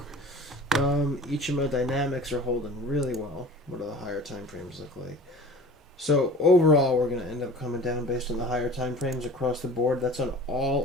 Each of my dynamics are holding really well. What do the higher time frames look like? So overall, we're going to end up coming down based on the higher time frames across the board. That's on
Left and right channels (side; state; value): both; normal; correlation 0.42